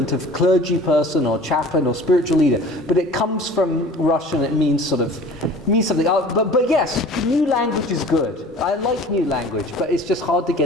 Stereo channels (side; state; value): both; normal; correlation 0.45